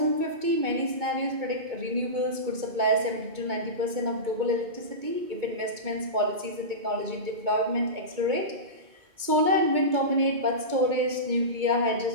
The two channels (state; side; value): late; left; 2.2 ms